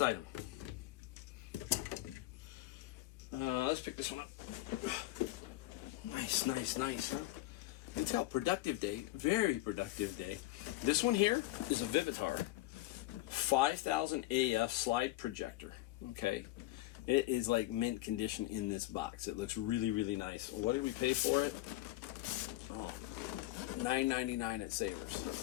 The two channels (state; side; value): quieter; right; 17.4 dB